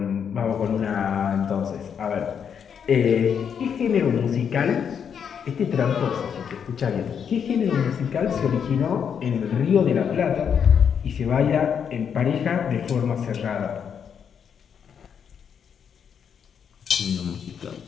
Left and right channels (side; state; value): right; quieter; 7.5 dB